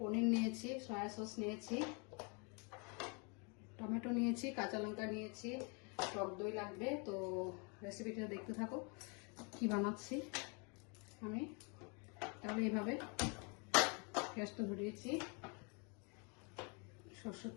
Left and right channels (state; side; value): quieter; right; 33.9 dB